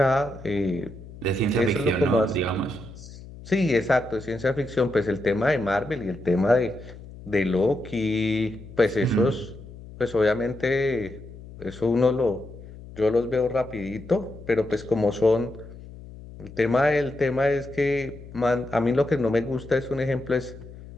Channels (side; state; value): left; noise; hum, 16 dB below the sound